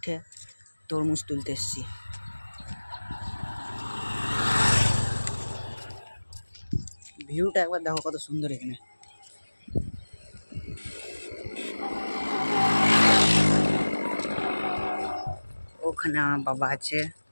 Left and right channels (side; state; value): both; inverted; correlation -1.00